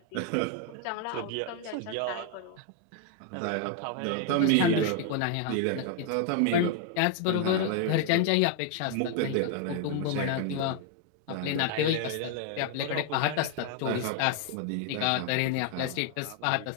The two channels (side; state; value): both; different; correlation 0.00